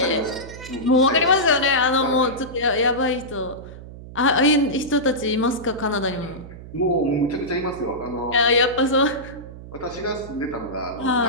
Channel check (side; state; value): right; noise; hum, 15 dB below the sound